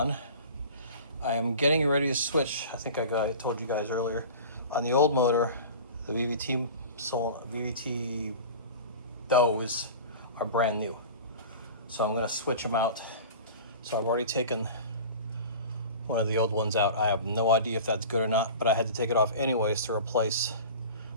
I am getting ready to switch. I think I told you guys earlier. On the old motor, the VVT those are brand new. So I'm gonna switch them out. So I've already taken one of the old ones out. I have no idea if that's good or not, but I had to take it off anyways to replace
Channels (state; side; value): inverted; both; correlation -0.37